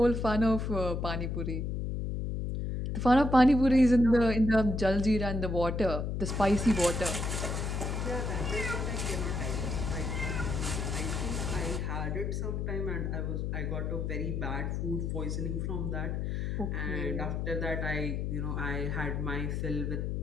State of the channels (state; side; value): noise; left; hum, 1 dB below the sound